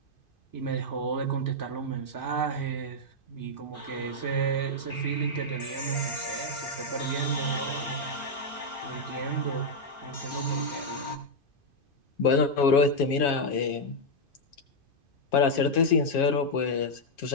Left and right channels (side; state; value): right; late; 2.5 ms